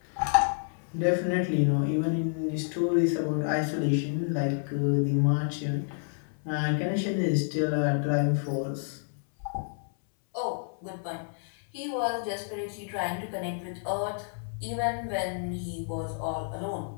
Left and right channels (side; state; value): right; silent; 58 dB below the other